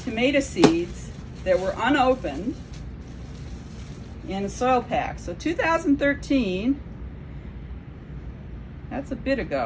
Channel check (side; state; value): both; identical; correlation 1.00